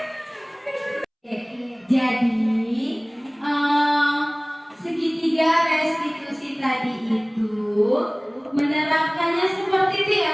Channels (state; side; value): identical; both; correlation 1.00